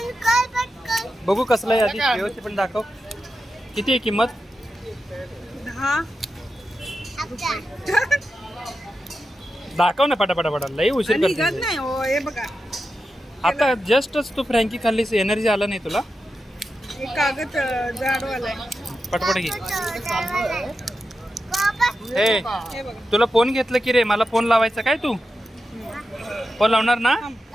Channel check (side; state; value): both; normal; correlation 0.89